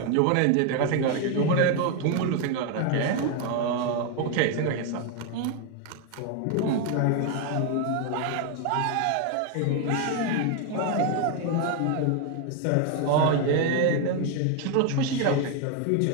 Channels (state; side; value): different; both; correlation 0.01